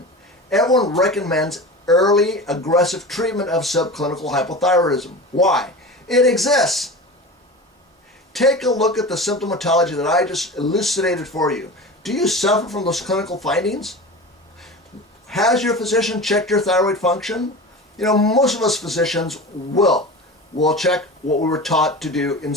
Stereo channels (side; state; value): both; normal; correlation 0.31